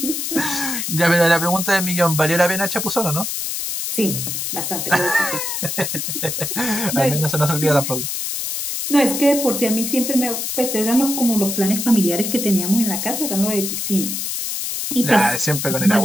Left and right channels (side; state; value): left; noise; hiss, 3 dB below the sound